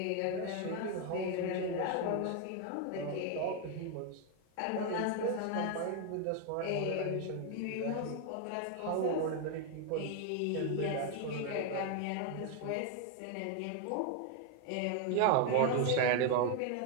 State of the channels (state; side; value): different; both; correlation 0.00